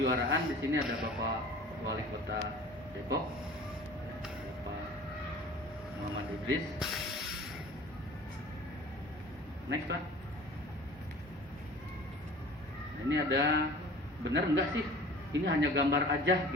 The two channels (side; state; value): both; normal; correlation 0.44